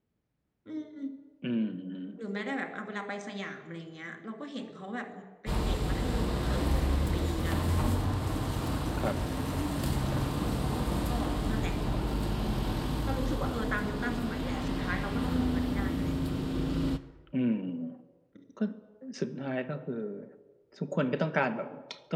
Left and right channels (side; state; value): both; identical; correlation 1.00